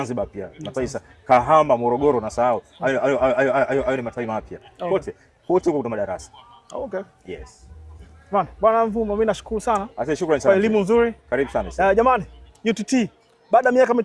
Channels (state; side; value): identical; both; correlation 1.00